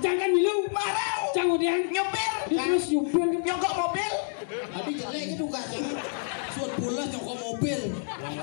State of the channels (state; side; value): silent; right; 59 dB below the other